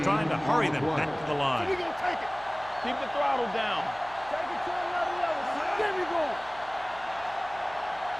trying to hurry them back to the line. We're going to take it. Keep the throttle down. Take it to another level. There we go.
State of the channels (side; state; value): right; noise; hum, 20 dB below the sound